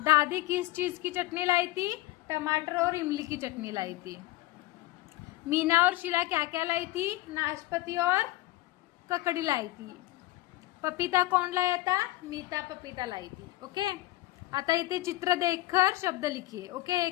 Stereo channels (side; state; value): right; quieter; 17.7 dB